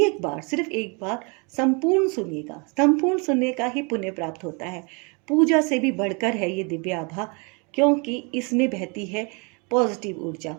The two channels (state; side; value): quieter; left; 32.2 dB